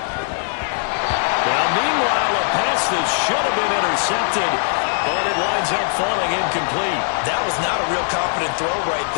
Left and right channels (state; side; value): silent; right; digital silence